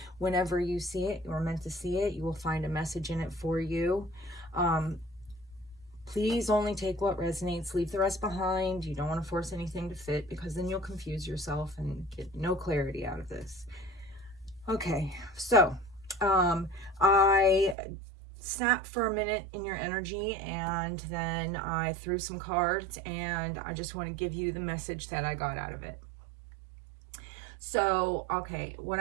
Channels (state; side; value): drops out; left; at 17.8 s